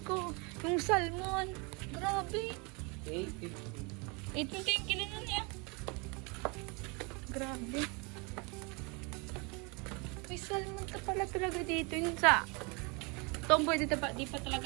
Yung salmon. Grabe. 850. 850 yung kilo nun eh. Grabe. May salmon ka pala talaga dito. Yun sa... Tomboy, di pa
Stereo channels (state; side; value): quieter; left; 30.3 dB